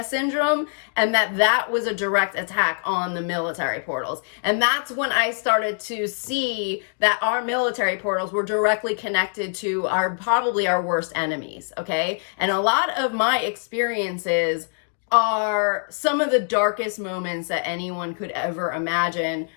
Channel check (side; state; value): right; silent; digital silence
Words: Syndrome and that was a direct attack on the military portals. And that's when I started to see that our military portals were directly connected to probably our worst enemies, okay? And a lot of my experiences are some of the darkest moments that anyone could ever imagine,